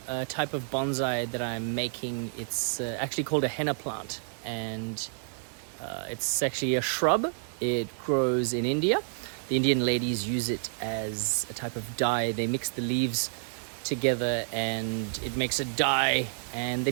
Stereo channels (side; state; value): left; silent; 58 dB below the other